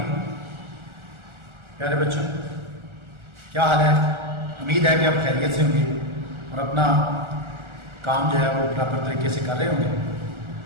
प्यारे बच्चों, क्या हाल है? उम्मीद है कि आप खैरियत से होंगे और अपना काम जो है वो प्रॉपर तरीके से कर रहे होंगे।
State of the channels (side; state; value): left; late; 1.4 ms